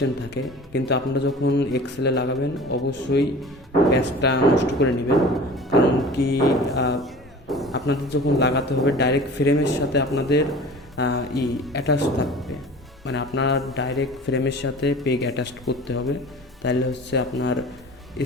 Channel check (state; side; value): normal; both; correlation 0.41